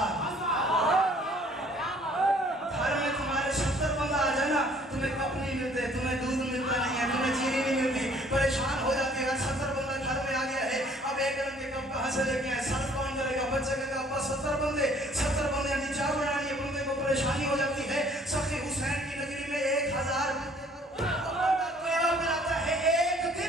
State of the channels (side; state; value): both; normal; correlation 0.58